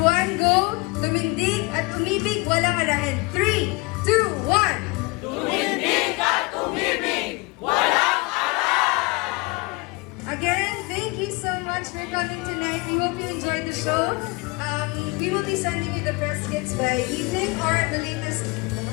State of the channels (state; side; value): quieter; right; 26.0 dB